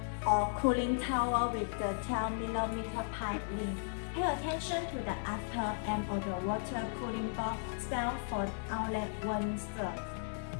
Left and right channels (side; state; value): right; silent; digital silence